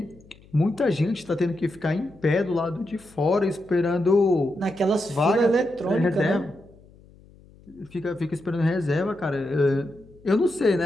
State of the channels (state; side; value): noise; left; hum, 25 dB below the sound